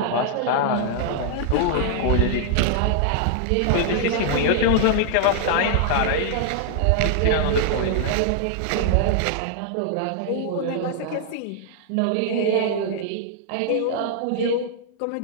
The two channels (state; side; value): different; both; correlation -0.01